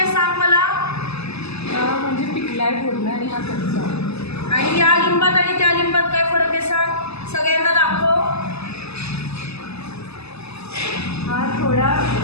सांग मला? म्हणजे पिकलाय पूर्ण आणि हा कच्चा. आणि या लिंबात आणि त्या लिंबात काय फरक आहे सांग? सगळ्यांना दाखव. हा थोडा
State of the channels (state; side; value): late; right; 0.79 ms